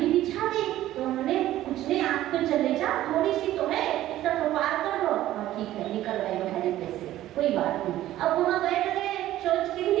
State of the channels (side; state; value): left; quieter; 14.0 dB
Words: बिछा दी, तो उन्होंने कुछ नहीं, आप तो चले जाओ, थोड़ी सी तो है, इतना तो पार कर लो। हाँ ठीक है, निकल गए हरी पे से, कोई बात नहीं। अब वहाँ बैठ गए, सोच के